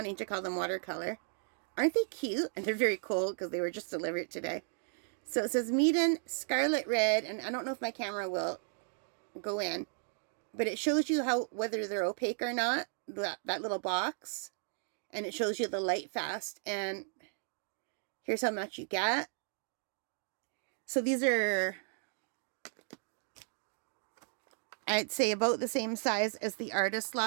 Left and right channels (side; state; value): left; silent; 54 dB below the other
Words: to call them watercolor. Aren't they cute? And they're very cold because they were just delivered today. So it says Meeden Scarlet Red, and I don't know if my camera will go in, but it shows you whether they're opaque or not, that little box, and it shows you the Lightfast, and here's how much you get. So these are, I'd say, about the same size as the Artist